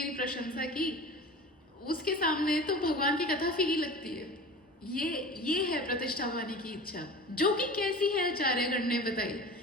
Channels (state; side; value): normal; both; correlation 0.36